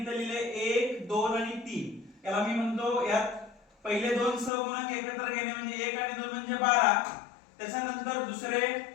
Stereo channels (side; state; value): right; drops out; at 4.5 s